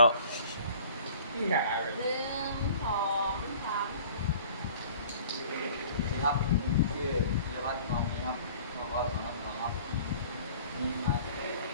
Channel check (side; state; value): both; inverted; correlation -0.49